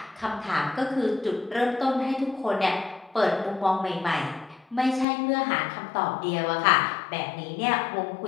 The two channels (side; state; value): right; drops out; at 5.1 s